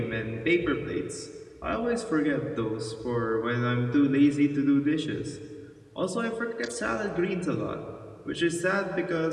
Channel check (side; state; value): both; identical; correlation 1.00